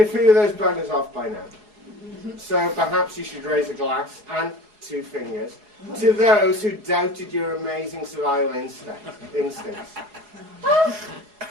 a few of those buggers off by now. So perhaps you should raise a glass and 2 fingers to those who doubted your amazing survival instincts.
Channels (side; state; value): left; late; 4.8 ms